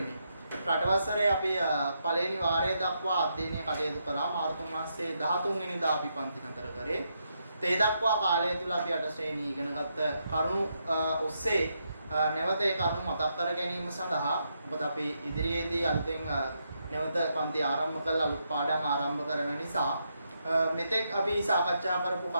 රටවසරේ අපි පළවෙනි වාරය දක්වා අධ්‍යයනය කටයුතු කරා. මාර්තු මාසයේ 13 වෙනිදා අපි පන්ති නතර කරේ. ඒ දක්වා කාලය තුල අපි 8 ශ්‍රේණිය ඉගෙනගත්ත කරුණු ඔස්සේ නැවත ඒ කරුණු මතක් කර ගැනීම සඳහා මොකද අපි ඉදිරියේදී අලුතෙන් නැවත පන්ති ආරම්භ කළා අලුත් පාඩම් ආරම්භ කරන නිසා මෙතෙක් අපි සාකච්ඡා කරපු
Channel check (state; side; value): inverted; both; correlation -0.80